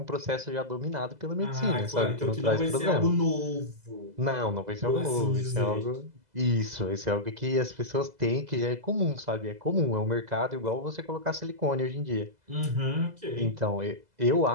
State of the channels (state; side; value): late; left; 2.0 ms